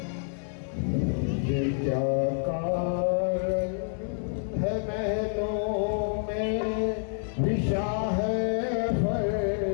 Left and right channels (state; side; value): silent; right; 57 dB below the other